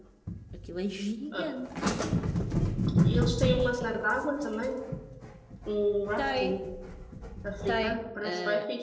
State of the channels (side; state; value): both; identical; correlation 1.00